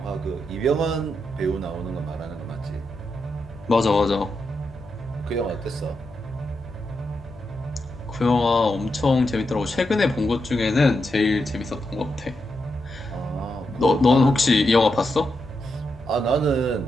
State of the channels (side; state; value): both; normal; correlation 0.85